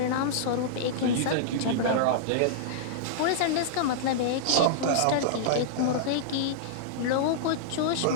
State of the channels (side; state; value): both; different; correlation -0.02